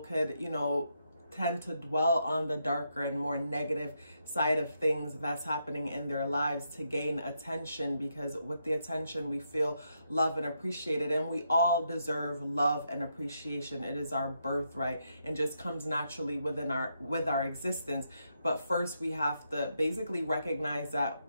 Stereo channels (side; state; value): both; inverted; correlation -0.80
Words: could, you know, tend to dwell on the darker and more negative side of things that's happening in their lives to gain attention, because with the attention we feel love and appreciated, and we all deserve love and appreciation. It is our birthright and just comes naturally with our existence. But first we have to basically recognize